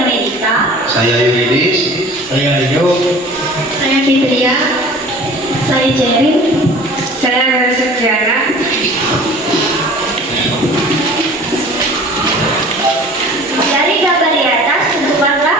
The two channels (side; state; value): both; normal; correlation 0.44